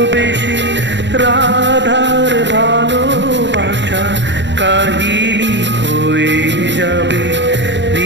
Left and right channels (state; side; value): late; left; 0.52 ms